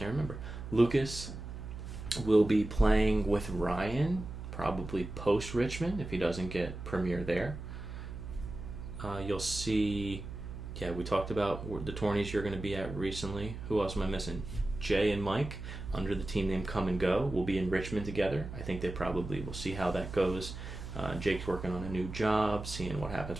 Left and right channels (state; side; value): noise; right; hum, 9 dB below the sound